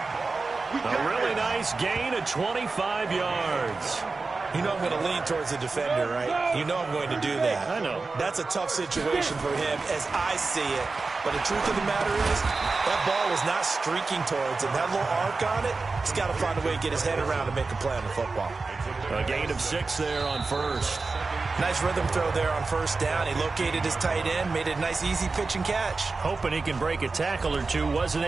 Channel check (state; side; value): quieter; left; 4.0 dB